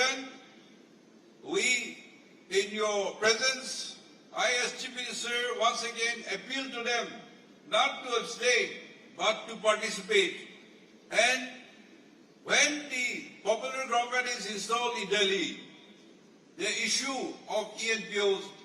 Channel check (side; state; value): both; identical; correlation 1.00